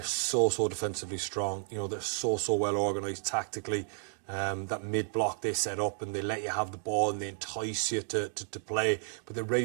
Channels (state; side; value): silent; left; 56 dB below the other